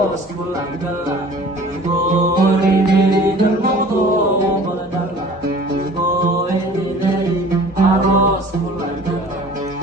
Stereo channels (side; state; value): both; normal; correlation 0.47